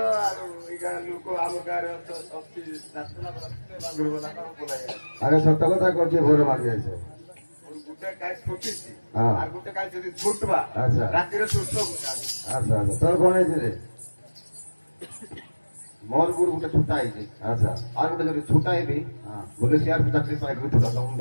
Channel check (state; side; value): inverted; both; correlation -1.00